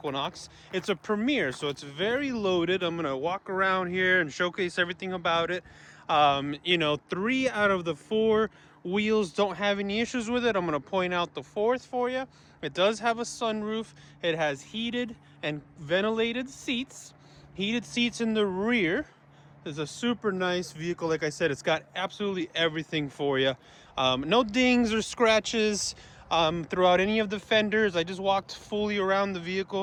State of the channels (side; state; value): both; identical; correlation 1.00